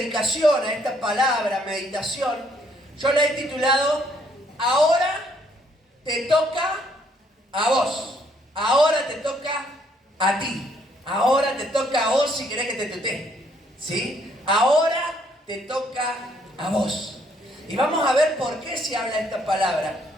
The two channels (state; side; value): normal; both; correlation 0.68